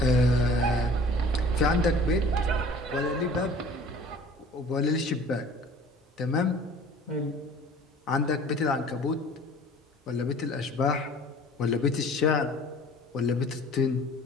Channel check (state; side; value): normal; both; correlation 0.47